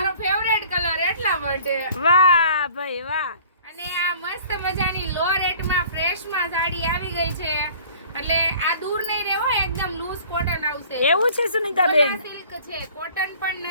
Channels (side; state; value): both; inverted; correlation -0.50